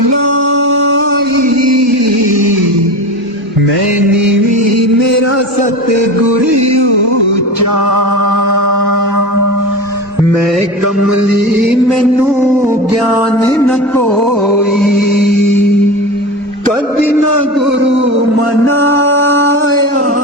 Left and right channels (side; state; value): both; normal; correlation 0.28